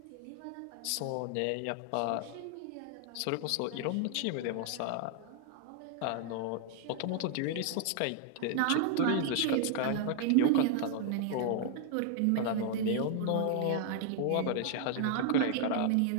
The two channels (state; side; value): different; both; correlation 0.00